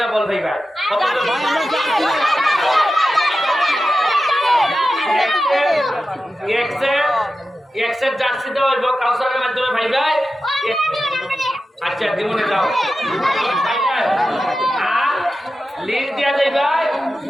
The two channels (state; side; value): normal; both; correlation 0.92